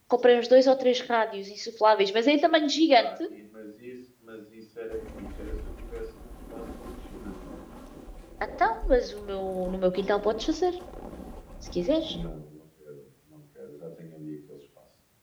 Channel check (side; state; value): both; identical; correlation 1.00